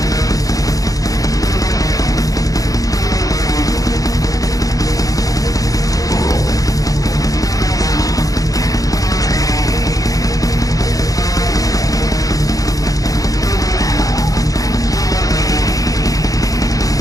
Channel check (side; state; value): right; late; 0.17 ms